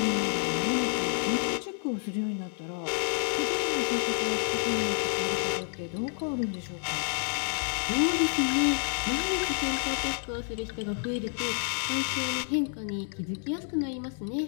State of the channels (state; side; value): silent; right; 58 dB below the other